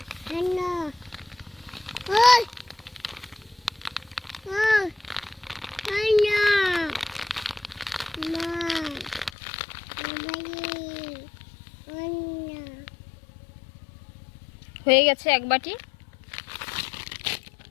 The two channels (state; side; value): drops out; right; at 9.3 s